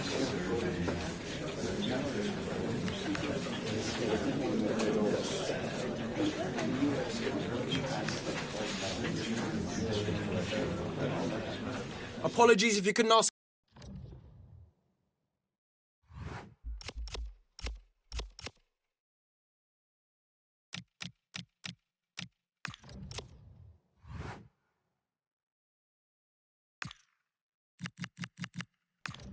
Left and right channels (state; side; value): identical; both; correlation 1.00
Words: Apologies if you couldn't ask.